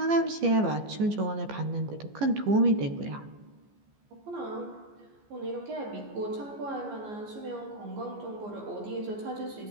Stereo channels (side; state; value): left; late; 14 ms